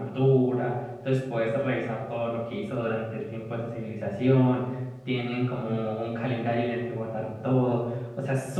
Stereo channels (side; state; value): both; identical; correlation 1.00